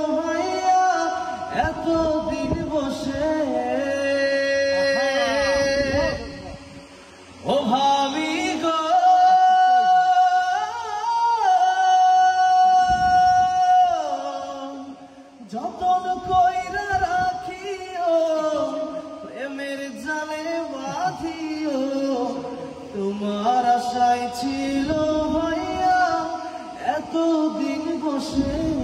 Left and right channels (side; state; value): both; identical; correlation 1.00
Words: ভাইয়া এতদিন বসে। ও ভাবি গো যতন কইরা রাখিও প্রেমের জালে বাঁধিও তোমার আশায় ছিল ভাইয়া এতদিন বসে।